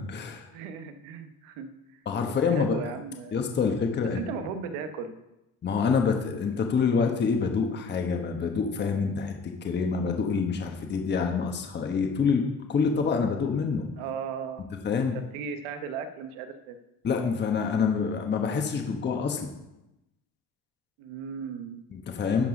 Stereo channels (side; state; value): right; quieter; 4.6 dB